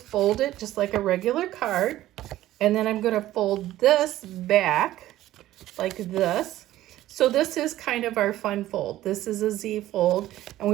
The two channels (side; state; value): left; quieter; 14.6 dB